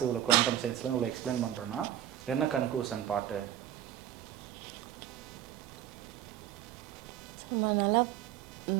இவ்வளோ குவாண்டம் சயின்ஸில் இவ்வளோ எக்ஸ்பிளைன் பண்ணுறோன்னா என்ன கன்க்ளூஷன் பாட்டு? நம்ம நல்லா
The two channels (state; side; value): quieter; left; 12.0 dB